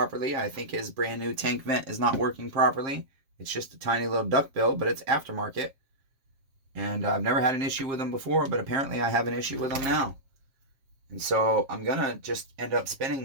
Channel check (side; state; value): left; late; 7.6 ms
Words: I think his brand new tank vent is not working properly. It's just a tiny little duckbill, but it's aftermarket. And I've never had an issue with them before, but apparently I have an issue with them now. And so I'm going to just end up spending